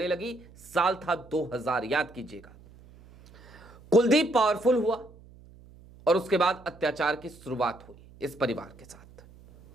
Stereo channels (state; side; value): noise; right; hum, 23 dB below the sound